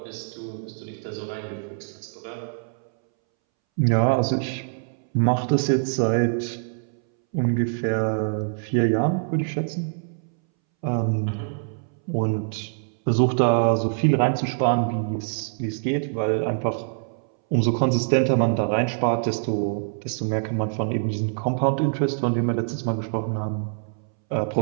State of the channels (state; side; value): silent; left; 62 dB below the other